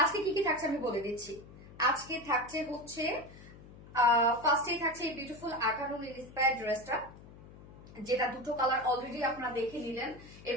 আজকে কি কি থাকছে আমি বলে দিচ্ছি। আজকে থাকছে হচ্ছে ফার্স্টেই থাকছে এই বিউটিফুল আকানুন ইন্সপায়ার্ড ড্রেসটা, যেটা দুটো কালার অলরেডি আপনারা দেখে নিলেন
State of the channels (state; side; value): noise; left; hum, 19 dB below the sound